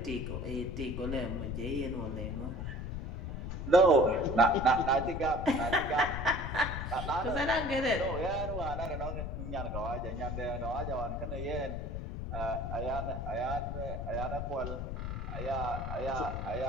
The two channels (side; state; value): left; noise; rumble, 4 dB below the sound